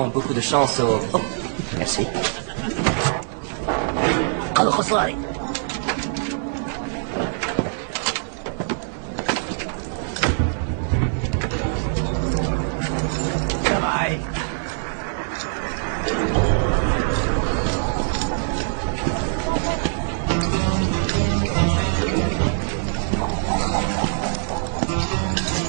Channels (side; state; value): left; silent; 63 dB below the other